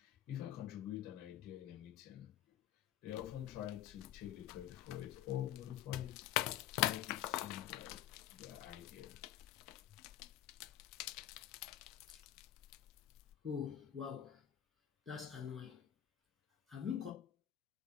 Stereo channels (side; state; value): right; quieter; 12.0 dB